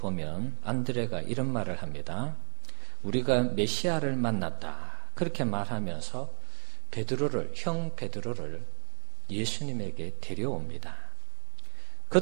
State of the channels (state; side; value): silent; left; 57 dB below the other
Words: 안드레가 이런 말을 합니다. 우리가 메시아를 만났다. 그렇게 말하면서 형 베드로를 예수님에게 데려옵니다.